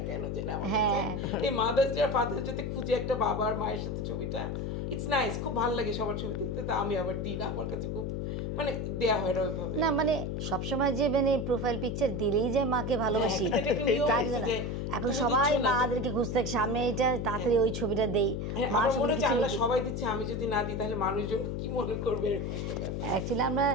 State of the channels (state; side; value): noise; left; hum, 2 dB below the sound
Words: কেন জানি আমার কাছে এই মাদার্স ডে আর ফাদার্স ডে তে খুঁজে একটা বাবা আর মায়ের সাথে ছবিটা, ইটস নাইস, খুব ভালো লাগে সবার ছবি দেখতে। তো আমি আবার দিই না, আমার কাছে খুব মানে দেয়া হয় না ওইভাবে। না মানে সবসময় যে মানে প্রোফাইল পিকচার দিলেই যে মাকে ভালোবাসি তা না। এখন সবাই মাদেরকে খুঁজতে থাকে, সামনে এটা তাড়াতাড়ি ওই ছবিটা দেই, মার সঙ্গে কিছু সবাই দিচ্ছে, আমি যদি না দিই তাহলে মানুষজন কি মনে করবে। অ্যাকচুয়ালি আমরা